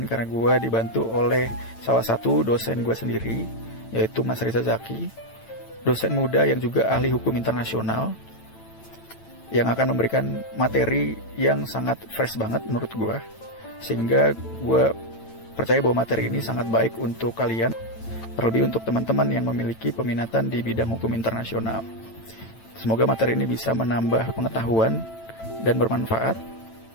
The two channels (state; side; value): late; right; 9.0 ms